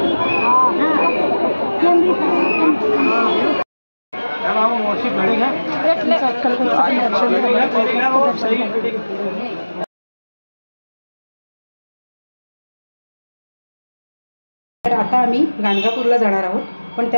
तर आता आम्ही गाणगापूरला जाणार आहोत, पण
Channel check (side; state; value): both; inverted; correlation -1.00